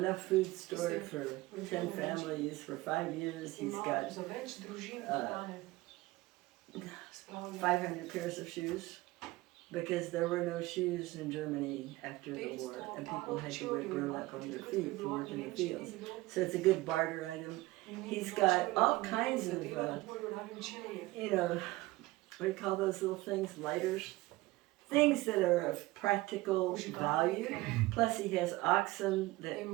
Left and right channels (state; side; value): quieter; left; 19.6 dB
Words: food stored for 10 families for 5 years. He's ima got za več družin hrane. Spravlja. 500 pairs of shoes because there were no shoes in Germany after the war, and people had to wear burlap on their feet to work in the fields. So it's a good barter item. He's got all kinds of, you know, what do you call those little things? Lighters? Things that are of practical value. Plus he has oxen that